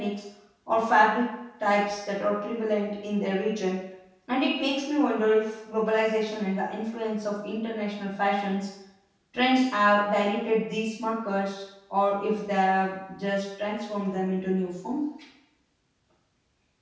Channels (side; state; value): both; identical; correlation 1.00